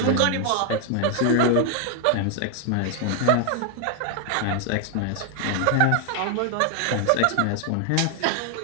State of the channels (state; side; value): different; both; correlation 0.00